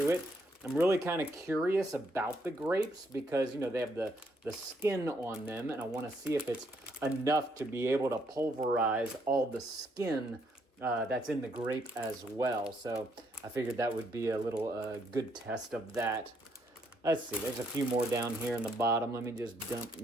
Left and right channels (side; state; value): both; normal; correlation 0.72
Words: it. I'm really kind of curious about the grapes because, they have the skin on them, and I want to see if it's enough to be able to pulverize all the skin that's in the grape as well. So I figured that would be a little good test of that. Let's see, there's a few more down here in the bottom. Let me